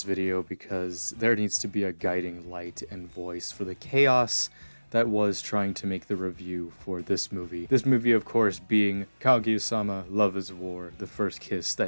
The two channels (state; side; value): inverted; both; correlation -1.00